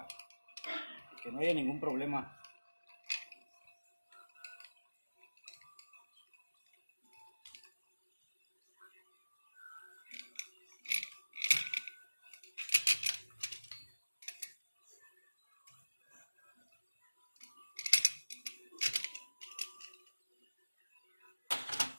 que no haya ningún problema.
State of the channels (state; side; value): inverted; both; correlation -1.00